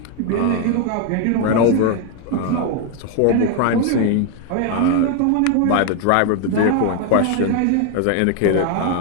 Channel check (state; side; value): different; both; correlation 0.01